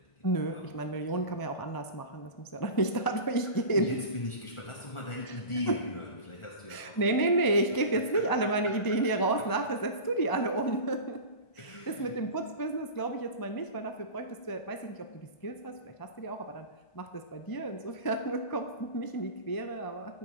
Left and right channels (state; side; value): late; right; 1.0 ms